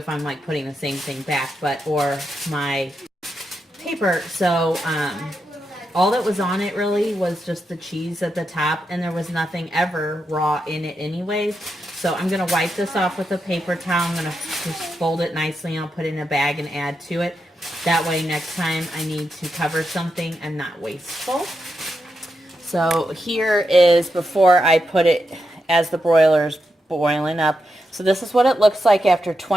I'm like putting the same thing back, or my paper. So all that was on it really was just the cheese at the top, and there was nothing ever raw in it anyways. So I'm going to wipe this off with a paper towel. I'm going to just fold it nicely, and I'll put it in a bag and add to it. That way next time I need to cover something, I'm not wasteful. So here is before I put it as the broiler's boiling up. So this is what it looks like after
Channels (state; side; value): normal; both; correlation 0.85